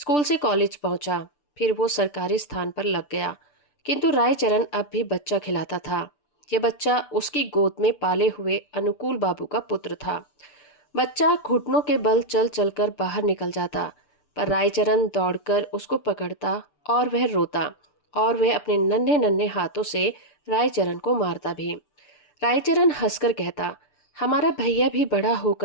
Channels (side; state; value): right; late; 6.8 ms